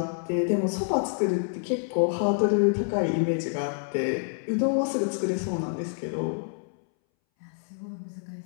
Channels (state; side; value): silent; right; 60 dB below the other